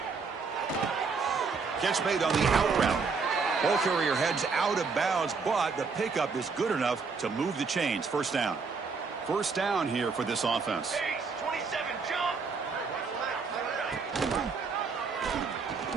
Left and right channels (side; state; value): left; quieter; 4.9 dB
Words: Catch made on the out route. Ball carrier heads out of bounds, but the pickup is good enough to move the chains. First down. First down here for this offense. Base, 27, jump.